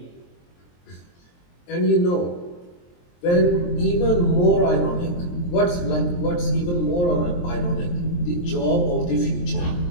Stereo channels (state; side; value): late; right; 23 ms